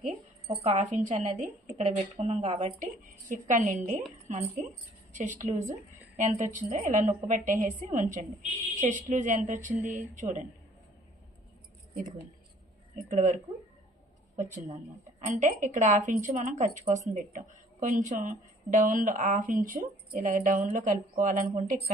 ఒక 1/2 ఇంచ్ అనేది ఇక్కడ పెట్టుకున్నాం కాబట్టి ఇక్కడ నుండి మనకి చెస్ట్ లూజ్ ఎంత వచ్చిందో ఇలా నొక్కు పెట్టేసి ఉంచండి. చెస్ట్ లూజ్ ఎంత వచ్చింది చూడండి, ఇదిగోండి ఇక్కడ వరకు వచ్చిందనమాట. అంటే ఇక్కడ 1/2 ఇంచ్ మనం ఖర్చు కోసం పెట్టాం. కొంచెం డౌన్లో 1/2 ఇంచు ఇలా డౌన్లో కలుపుకోవాలనుకుంటే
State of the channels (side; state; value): both; normal; correlation 0.57